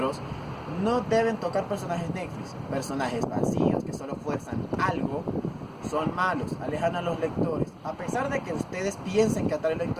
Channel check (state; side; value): identical; both; correlation 1.00